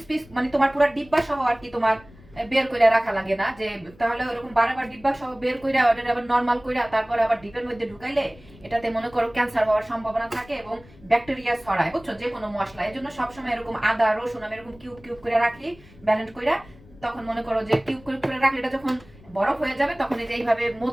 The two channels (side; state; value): left; noise; rumble, 24 dB below the sound